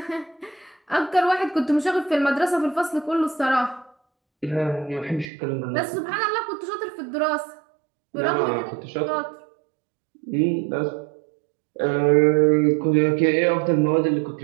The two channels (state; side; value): drops out; left; at 5.2 s